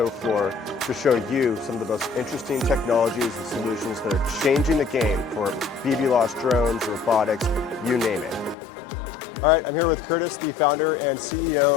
floor to show you some of the most interesting technologies and solutions that are changing the game for BB-lost drones, robotics, you name it. All right, I'm here with Curtis, the founder and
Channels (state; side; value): drops out; right; at 8.6 s